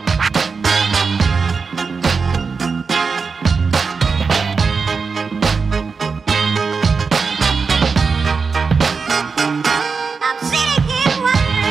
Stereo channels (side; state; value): left; quieter; 5.0 dB